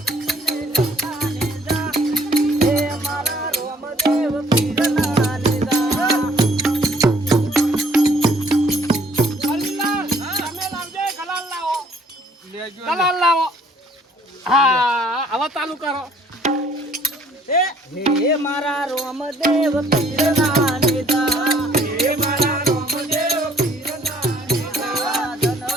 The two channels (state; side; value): normal; both; correlation 0.61